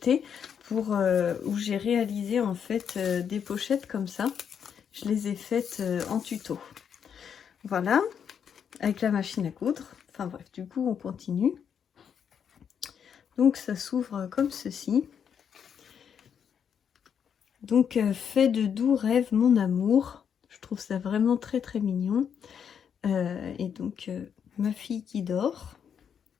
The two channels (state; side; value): quieter; right; 7.7 dB